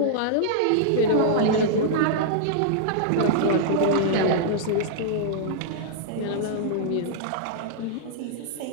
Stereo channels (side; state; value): both; different; correlation -0.02